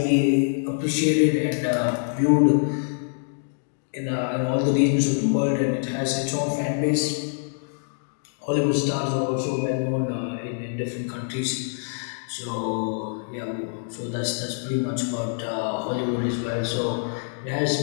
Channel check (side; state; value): right; silent; digital silence